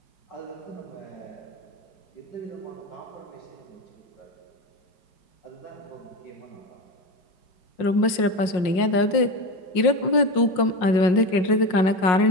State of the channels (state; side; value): late; right; 5.5 ms